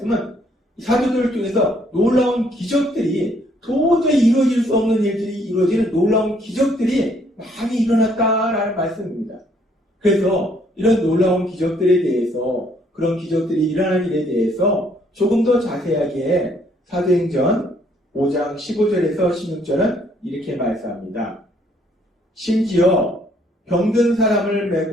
사도들을 통해서 놀라운 기적들이 도저히 이루어질 수 없는 일들이 이루어지는 놀라운 기적들이 많이 일어났다라는 말씀입니다. 그래서 이런 놀라운 기적들에 대해서, 그런 기적들이 일어난 일에 대해서 조금 더 자세하게 사도행전 5장 15절에서 16절은 이렇게 말씀합니다. 심지어 병든 사람을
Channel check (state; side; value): normal; both; correlation 0.66